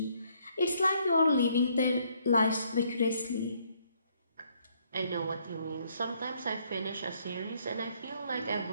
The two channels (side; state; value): both; inverted; correlation -0.68